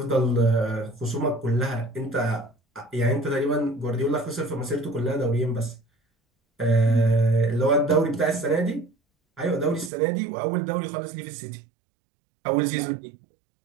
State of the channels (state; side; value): drops out; left; at 9.9 s